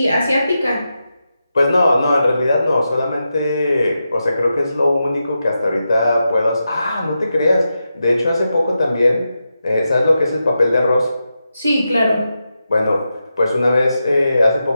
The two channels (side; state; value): both; inverted; correlation -0.88